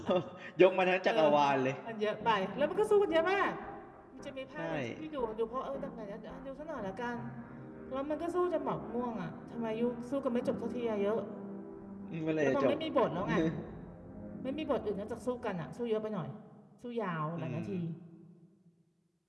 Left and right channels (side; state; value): both; identical; correlation 1.00